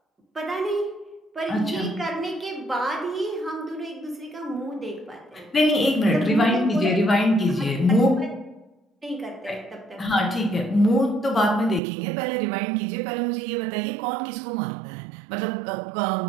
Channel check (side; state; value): left; drops out; at 11.8 s